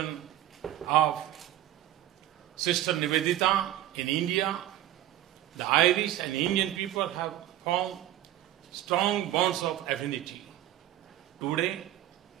of Sister Nivedita in India, the Irish and Indian people have formed strong bonds of affinity. Today,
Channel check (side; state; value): left; quieter; 13.4 dB